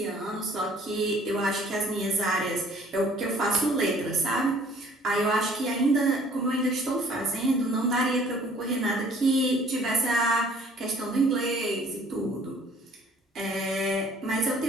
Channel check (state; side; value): normal; both; correlation 0.56